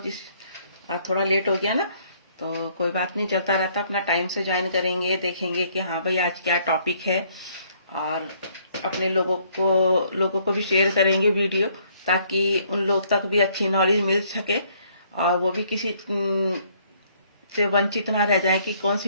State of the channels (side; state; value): both; inverted; correlation -0.65